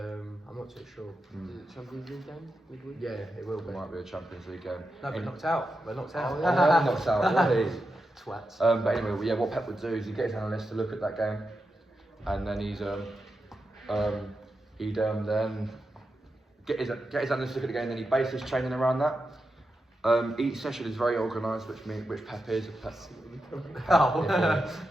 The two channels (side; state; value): both; normal; correlation 0.88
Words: not too sure. Is it Champions League game midweek? Yeah, it will It be. might be a Champions League game. No, we're In- knocked out. We're knocked out. Oh, Oh, yeah, knocks out. Really? Twats. But anyway, yeah, what Pep would do is he'd get his analysts to look at that game, and then he'd then get his analysts to look at the game, and then he'd base his training around that. Each session is very organised, which Pep is. Oh. Yeah,